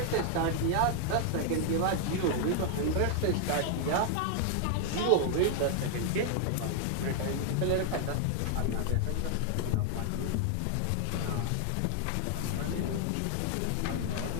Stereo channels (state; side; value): different; both; correlation 0.00